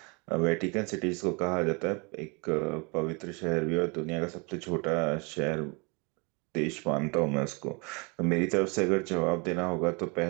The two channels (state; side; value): quieter; left; 30.7 dB